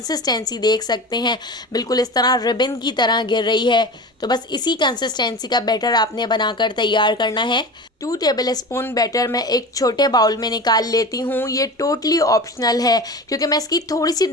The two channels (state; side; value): normal; both; correlation 0.32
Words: देख सकते हैं, बिल्कुल इस तरह रिबन की तरह गिर रही है। तो बस इसी कंसिस्टेंसी का बैटर आपने बनाकर तैयार करना है। 2 टेबल स्पून बैटर मैं एक छोटे बाउल में निकाल लेती हूँ। ये टोटली ऑप्शनल है क्योंकि मैं इसकी थोड़ी सी